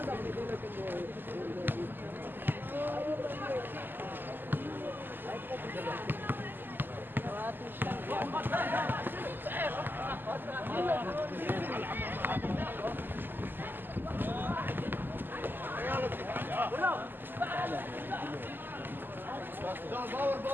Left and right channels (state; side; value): late; left; 0.092 ms